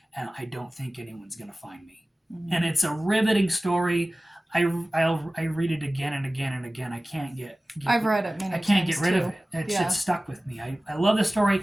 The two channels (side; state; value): both; normal; correlation 0.97